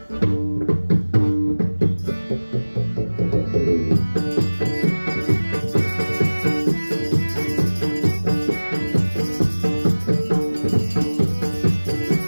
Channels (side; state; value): both; inverted; correlation -1.00